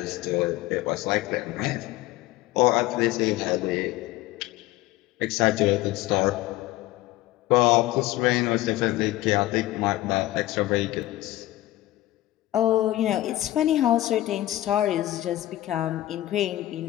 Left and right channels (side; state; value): right; quieter; 15.9 dB